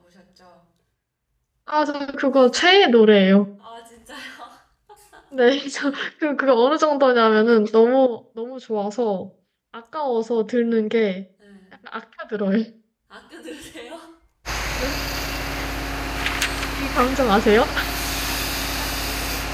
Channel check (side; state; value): both; identical; correlation 1.00